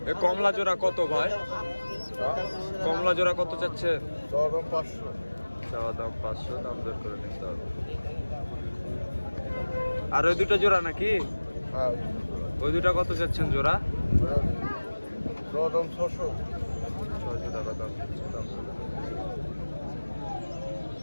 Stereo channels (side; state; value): both; inverted; correlation -1.00